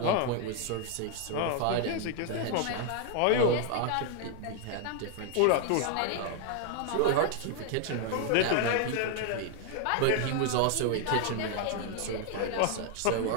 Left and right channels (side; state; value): both; different; correlation 0.00